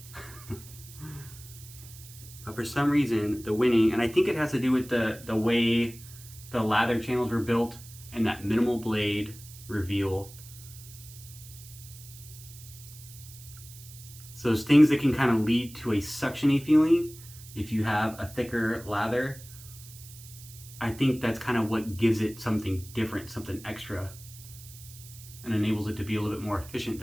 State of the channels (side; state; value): right; noise; hiss, 18 dB below the sound